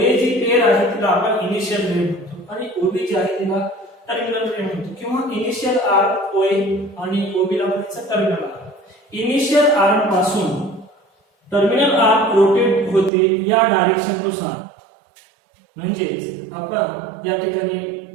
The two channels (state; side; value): drops out; left; at 13.1 s